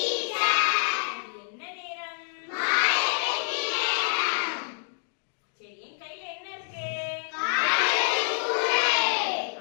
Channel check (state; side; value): silent; right; digital silence